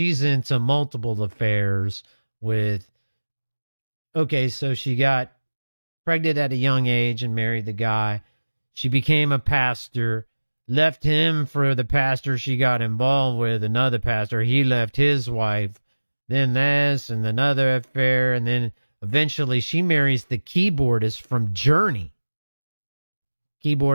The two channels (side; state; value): both; inverted; correlation -1.00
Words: into multiple affairs with, okay, so she got pregnant at a young age and married the guy. She became a pastor, left him for the pastor she got involved with, another pastor. He left his wife, then this and another affair, and then eventually she marries the keyboardist from Journey.